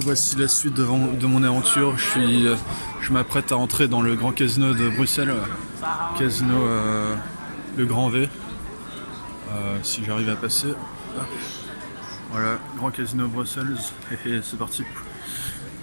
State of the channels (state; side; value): inverted; both; correlation -1.00